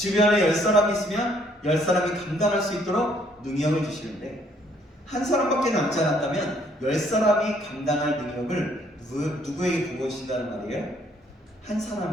10사람이 있으면 10사람이 감당할 수 있도록 능력을 주시는데, 한 사람밖에 남지 않았다면 10사람이 감당할 능력을 누구에게 부어주신다는 말이에요? 한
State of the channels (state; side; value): normal; both; correlation 0.65